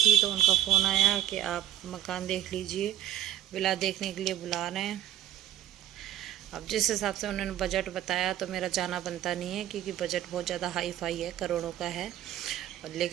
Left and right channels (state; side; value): quieter; left; 12.4 dB